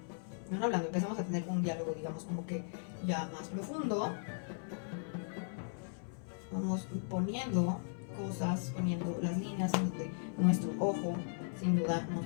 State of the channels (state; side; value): silent; right; 53 dB below the other